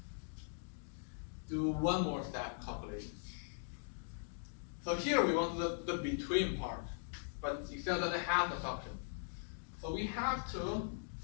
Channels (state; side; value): silent; right; digital silence